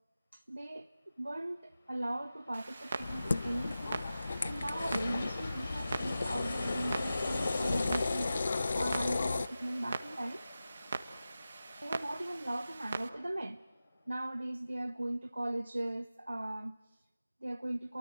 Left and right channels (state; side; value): inverted; both; correlation -0.93